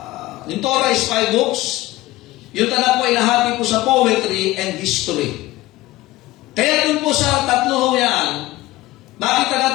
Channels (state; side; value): quieter; right; 17.9 dB